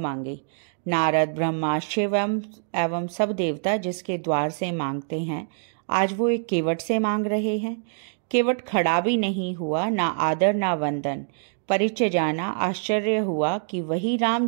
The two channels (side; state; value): left; silent; digital silence